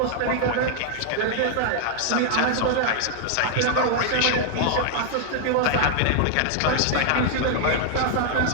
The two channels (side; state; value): both; different; correlation 0.00